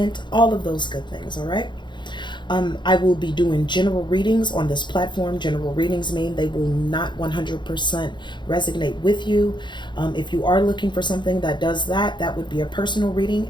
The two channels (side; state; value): right; late; 0.22 ms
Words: all of those good things, all right? I will be doing general readings on this platform. General readings mean they will not 100% resonate with you. If you are looking for something that does that, that would be a personal reading,